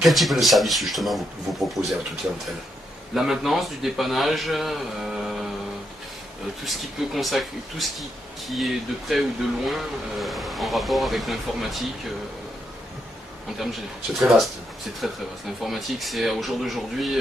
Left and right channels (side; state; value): both; normal; correlation 0.80